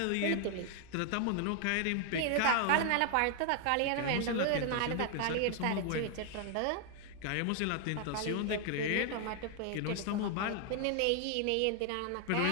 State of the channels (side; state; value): both; different; correlation 0.00